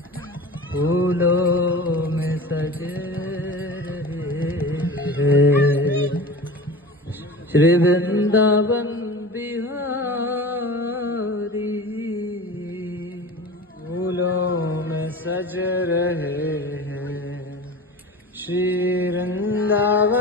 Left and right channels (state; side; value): normal; both; correlation 0.34